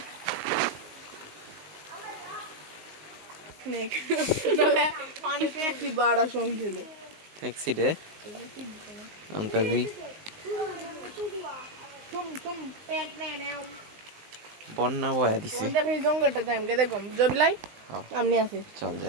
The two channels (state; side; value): late; left; 19 ms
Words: ট্যাক্সি দে অন্তরি বন্যা বয়া দিছে জঙ্গলটা দেখো জবিলাই হ্যাঁ, আমনি আছে চল